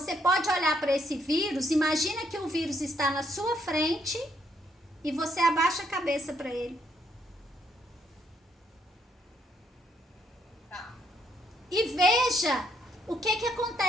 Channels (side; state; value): both; normal; correlation 0.72